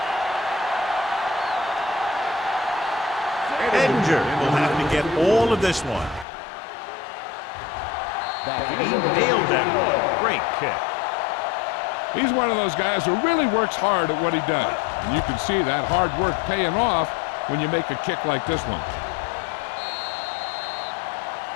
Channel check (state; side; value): drops out; right; at 6.2 s